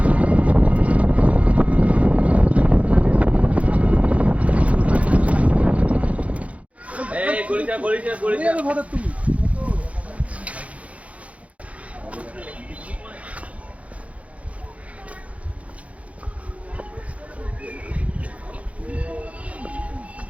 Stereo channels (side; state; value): left; late; 0.065 ms